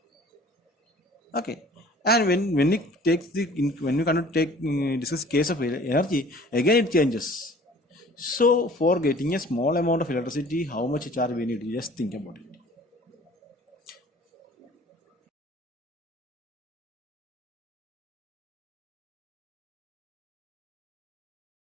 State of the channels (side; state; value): both; normal; correlation 0.50